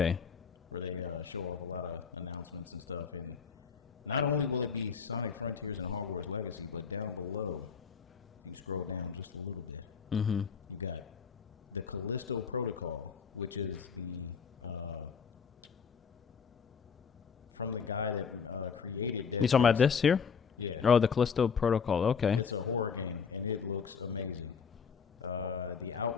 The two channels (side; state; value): right; quieter; 6.2 dB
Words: Where they show off a lot of announcements and stuff. And not only will it be Sonic Frontiers and Hogwarts Legacy, but down below, if you scroll down just a little bit, you got the Callisto Protocol, which is the from the guy that created Dead Space. You talking about this here? Yeah. Oh, the Callisto Protocol. Okay. It's a horror game, and it looks amazing. The